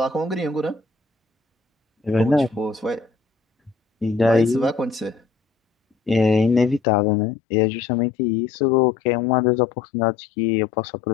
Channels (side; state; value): right; drops out; at 6.8 s